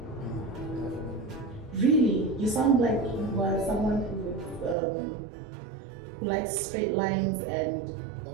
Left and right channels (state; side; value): drops out; left; at 4.8 s